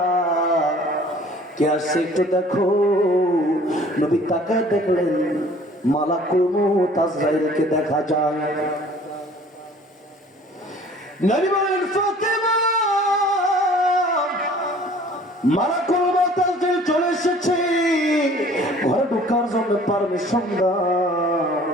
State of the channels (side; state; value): both; normal; correlation 0.51